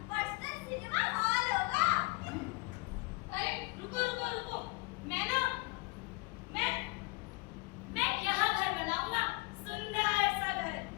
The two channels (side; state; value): right; quieter; 26.9 dB